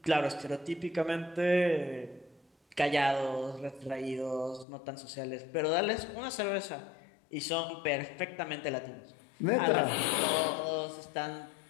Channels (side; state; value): right; drops out; at 4.7 s